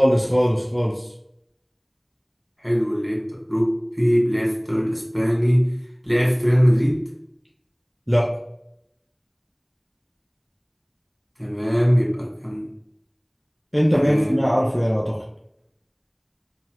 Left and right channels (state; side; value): identical; both; correlation 1.00